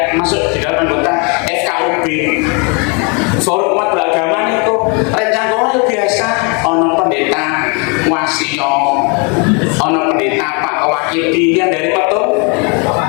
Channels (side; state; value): right; quieter; 33.6 dB